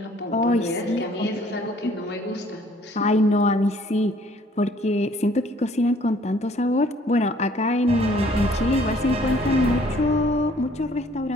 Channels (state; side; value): normal; both; correlation 0.59